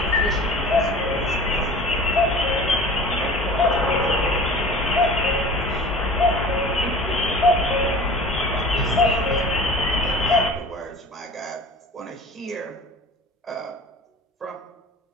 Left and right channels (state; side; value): normal; both; correlation 0.41